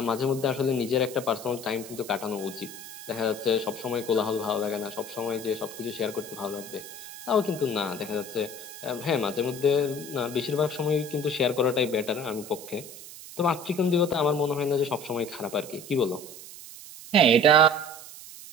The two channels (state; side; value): noise; right; hiss, 14 dB below the sound